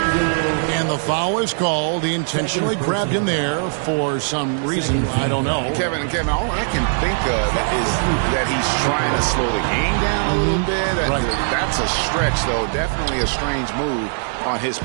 And the foul is called. He intentionally grabbed him there for some reason. I don't know. Kevin, all I can think of is that he's trying to slow the game down a little bit. Right. That's a stretch, though. Definitely a strange move on his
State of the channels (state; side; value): silent; left; digital silence